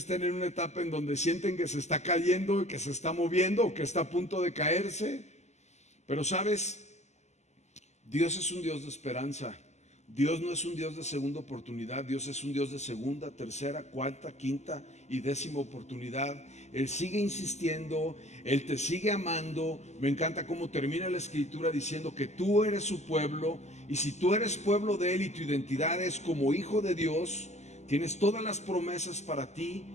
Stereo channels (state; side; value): late; right; 0.33 ms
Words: en una etapa en donde sienten que se está cayendo, que se está moviendo o que está a punto de caerse. Pero sabes, Dios es un Dios de esperanza. Dios no es un Dios de segunda oportunidad. Dios es un Dios de segunda, tercera, cuarta, quinta y décima oportunidad. Él sigue insistiendo, Él te sigue amando. Me encanta cómo termina la escritura diciendo que tú eres su pueblo, y si tú eres pueblo de Él y tu identidad es como hijo de Dios, tienes todas las promesas para ti,